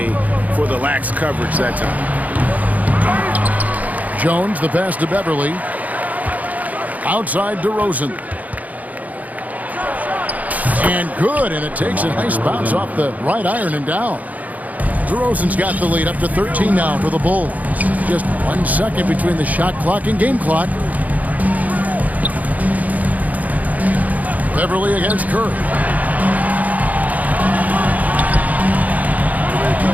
for the lax coverage that time. Jones, the pass to Beverly. Outside DeRozan. And good, and it takes a nice bounce off the right iron and down. DeRozan's got the lead up to 13 now for the Bulls. Just 1 second between the shot clock and game clock. Beverly against Curry.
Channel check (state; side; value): late; left; 0.076 ms